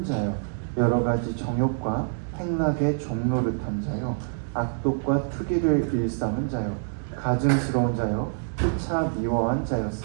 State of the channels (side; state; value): left; silent; digital silence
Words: 자요, 여러 가지 정욕과 행락의 종노릇한 자요, 악독과 투기를 일삼은 자요, 가증스러운 자요, 피차 미워한